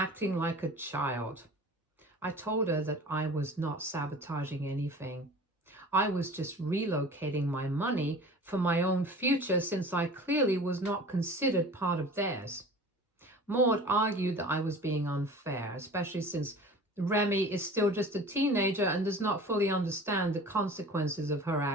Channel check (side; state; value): both; normal; correlation 0.41